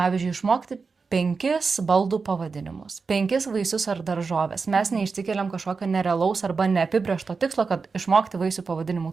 išmokti 5 baldų pavadinimus, 5 vaisius ar daržovės. Mes neišsikeliam kažkokio nerealaus arba neapibrėžto tikslo, kad išmokti vaisių pavadinimų.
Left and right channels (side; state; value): left; quieter; 4.7 dB